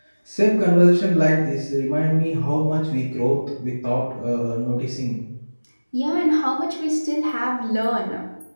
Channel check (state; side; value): inverted; both; correlation -1.00